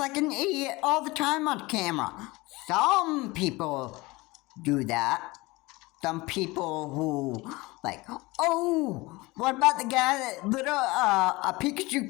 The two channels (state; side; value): quieter; right; 22.3 dB